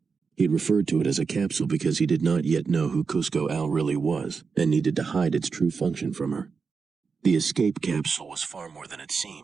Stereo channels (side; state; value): left; quieter; 5.2 dB